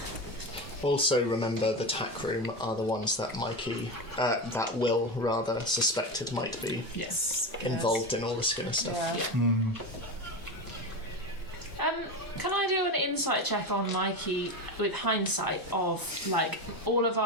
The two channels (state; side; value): normal; both; correlation 0.20